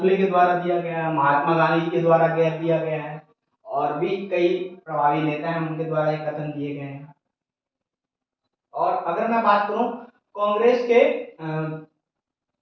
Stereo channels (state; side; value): identical; both; correlation 1.00